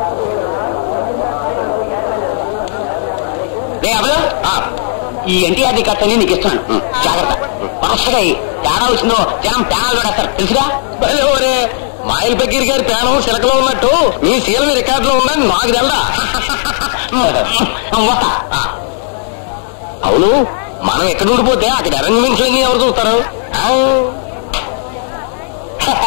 ఎన్టీఆర్ కట్టని నీకు ఇస్తున్నాను, జాగ్రత్త. వరుసగా తేడా వచ్చిందో జనం ప్యానాలు పడేస్తారు, తెలుసుగా. మాయిల్ బకీర్ గారి ప్యానం సిలకలో ఉన్నట్టు మీ సీఎం రికార్డులో ఉందని నాకు తెల్దా. అవును, మనం ఎక్కడ ఉండిపోతే అక్కడ అరేంజ్మెంట్స్ అన్ని ఎవరు చూస్తారు?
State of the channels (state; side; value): silent; right; 72 dB below the other